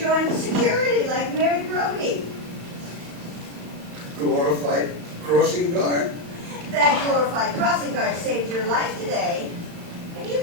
the security like Mary Brody. Glorified crossing guard? That glorified crossing guard saved your life today, and you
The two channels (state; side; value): late; left; 35 ms